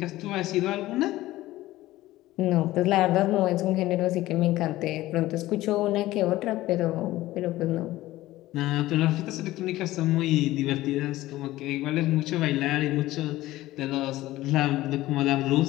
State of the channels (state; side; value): quieter; right; 16.6 dB